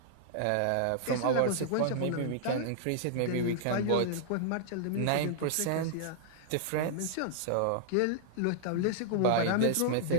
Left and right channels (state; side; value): different; both; correlation -0.01